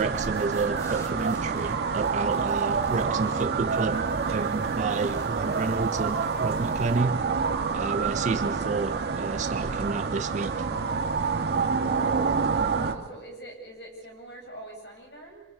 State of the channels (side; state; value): left; quieter; 4.5 dB